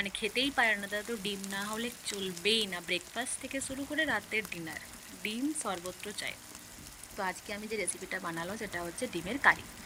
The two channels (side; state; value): both; identical; correlation 1.00